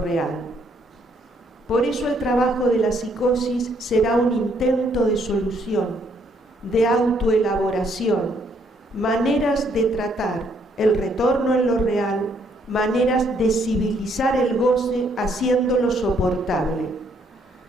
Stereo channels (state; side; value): normal; both; correlation 0.69